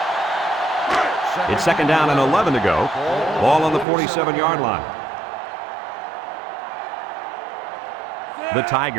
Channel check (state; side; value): drops out; left; at 3.9 s